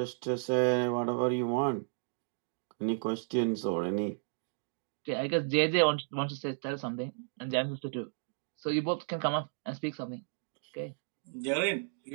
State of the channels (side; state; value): left; silent; digital silence